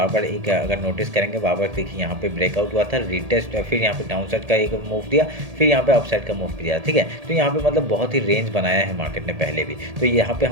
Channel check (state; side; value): late; left; 1.7 ms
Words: बार एक अगर नोटिस करेंगे, बार बार देखिए यहाँ पे ब्रेकआउट हुआ था, रिटेस्ट, फिर यहाँ पे डाउन साइड का एक मूव दिया, फिर यहाँ पे अप साइड का मूव दिया। ठीक है, तो यहाँ पे मतलब बहुत ही रेंज बनाया है मार्केट ने पहले भी। तो यहाँ पे